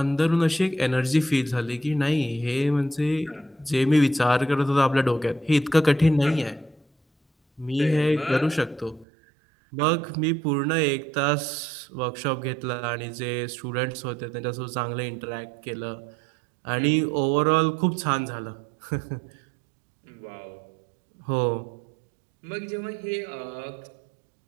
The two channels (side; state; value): left; drops out; at 9.1 s